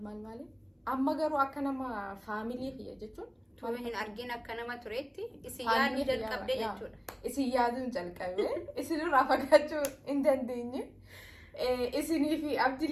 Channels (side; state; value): both; identical; correlation 1.00